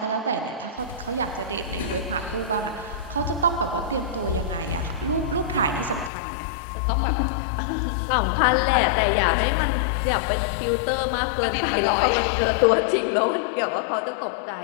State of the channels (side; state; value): right; drops out; at 6.1 s